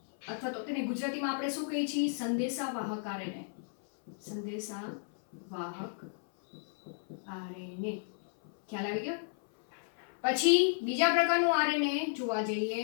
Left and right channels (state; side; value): silent; right; 56 dB below the other